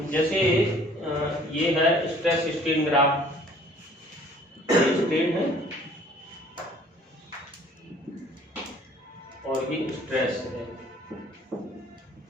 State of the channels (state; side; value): normal; both; correlation 0.55